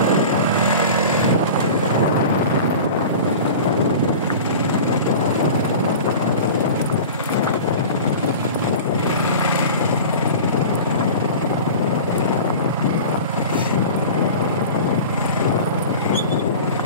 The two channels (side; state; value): both; inverted; correlation -0.35